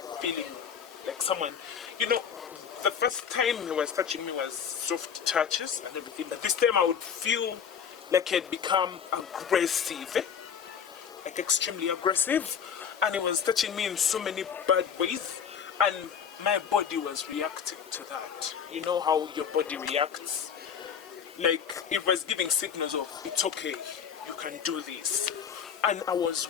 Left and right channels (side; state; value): right; quieter; 7.5 dB